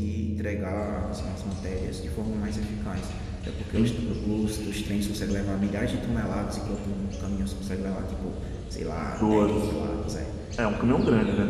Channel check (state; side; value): identical; both; correlation 1.00